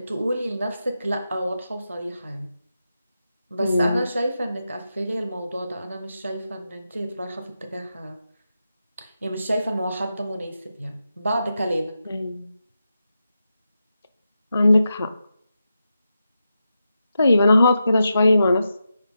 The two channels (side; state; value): both; inverted; correlation -0.88